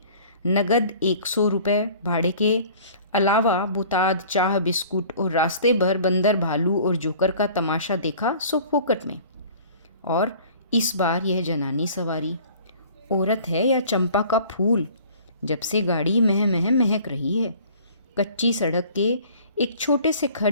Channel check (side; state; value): both; inverted; correlation -0.49